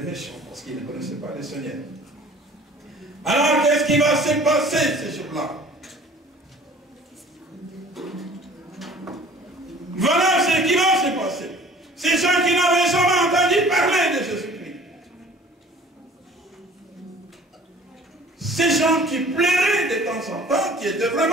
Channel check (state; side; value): normal; both; correlation 0.49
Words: méchants parce qu'ils ne connaissaient pas le Seigneur. Alors qu'est-ce qui va se passer ces jours-là? Voilà ce qui va se passer. Ces gens qui n'avaient jamais entendu parler de Jésus-Christ. Ces gens qui pleuraient de temps en temps, qui étaient